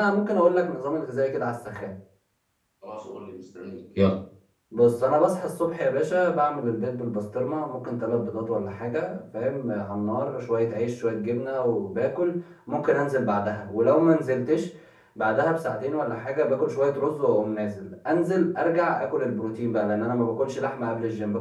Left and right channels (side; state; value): both; identical; correlation 1.00